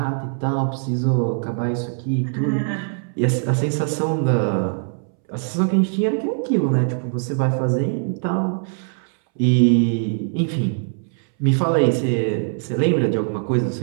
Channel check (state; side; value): silent; left; 64 dB below the other